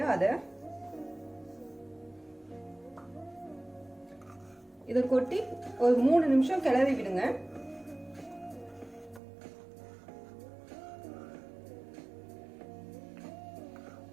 அதை. இதை கொட்டி ஒரு 3 நிமிஷம் கிளறி விடுங்க.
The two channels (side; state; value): left; drops out; at 9.2 s